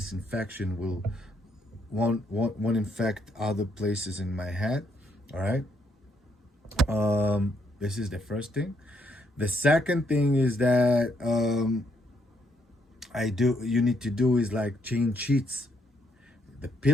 infection won't infect other places in my head. All right. This is the first thing. The second thing is that you need to do is like change sheets. the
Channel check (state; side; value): normal; both; correlation 0.74